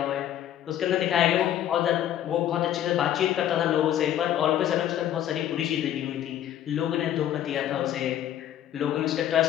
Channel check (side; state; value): right; quieter; 11.3 dB